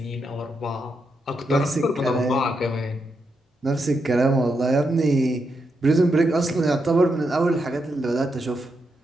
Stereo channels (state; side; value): normal; both; correlation 0.83